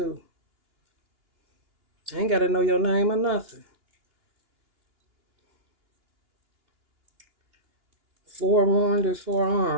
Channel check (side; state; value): left; late; 2.8 ms